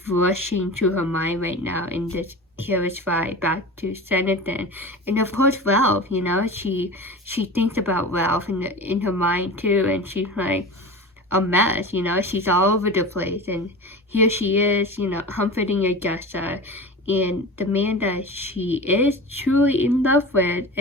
rushing through her mind right now in this carriage ride back to Sanditon. And of course Ralph, you know, she thinks about Ralph in her mind too, and she's like a mess, you know, she's all over the place, and here she is, you know, comforting Augusta, and the man that she is truly in love with,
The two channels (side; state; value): both; normal; correlation 0.32